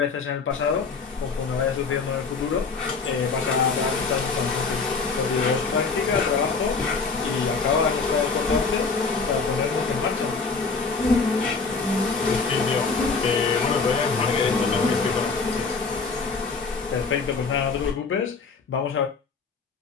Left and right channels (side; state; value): right; quieter; 4.6 dB